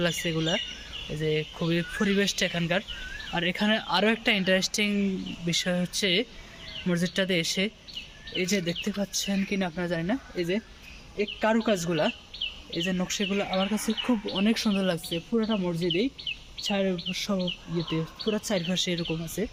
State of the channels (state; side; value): identical; both; correlation 1.00